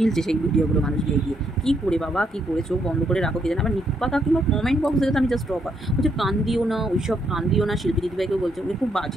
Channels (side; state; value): both; normal; correlation 0.75